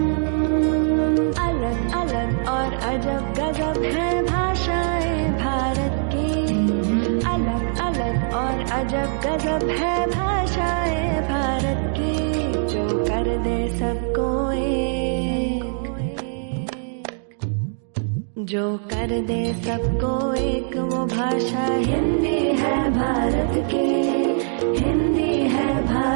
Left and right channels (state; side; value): silent; left; 64 dB below the other